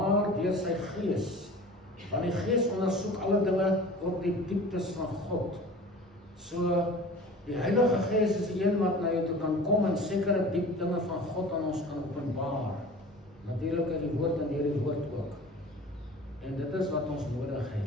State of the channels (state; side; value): normal; both; correlation 0.41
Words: deur sy Gees. Want die Gees ondersoek alle dinge, ook die dieptes van God. So, die Heilige Gees is die een wat na jou toe kan kom en sekere diep dinge van God aan ons kan openbaar. Natuurlik in die woord en deur die woord ook. En dit is wat ons nodig